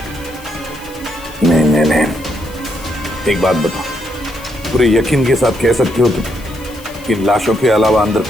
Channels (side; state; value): left; noise; hiss, 21 dB below the sound